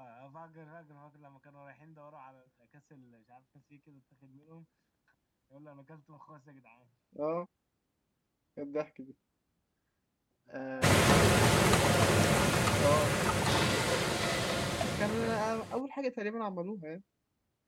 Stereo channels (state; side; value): identical; both; correlation 1.00